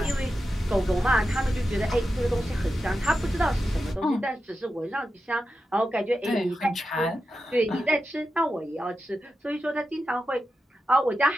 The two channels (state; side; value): normal; both; correlation 0.90